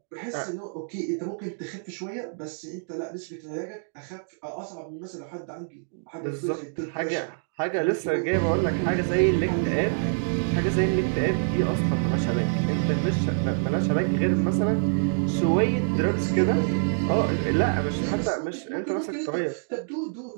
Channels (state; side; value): silent; left; digital silence